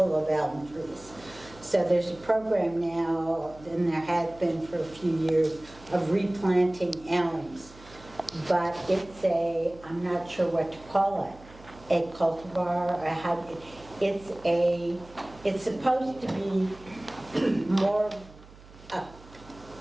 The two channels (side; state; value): right; noise; hum, 21 dB below the sound